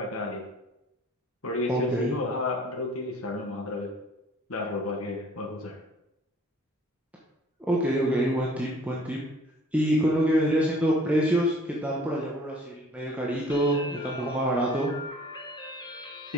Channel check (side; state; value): both; normal; correlation 0.53